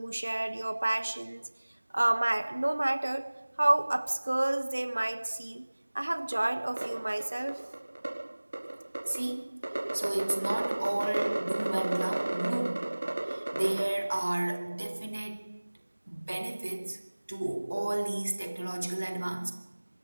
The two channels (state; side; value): inverted; both; correlation -1.00